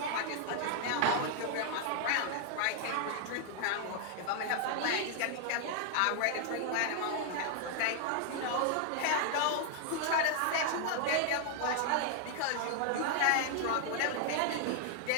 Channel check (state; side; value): different; both; correlation 0.00